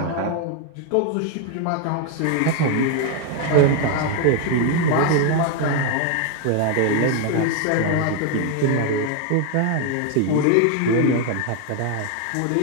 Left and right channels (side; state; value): both; different; correlation 0.00